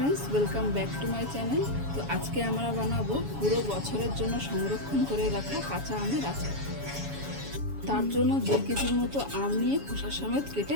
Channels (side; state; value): left; late; 7.1 ms